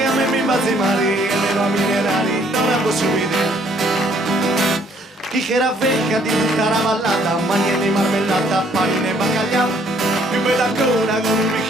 a me mi fa zimari, e le va minerali non la posso vedere. Chi che era vecchia di tutta la vallata, magne di marmellata, panine e baccaglià, più bella ancora con un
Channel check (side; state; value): both; normal; correlation 0.64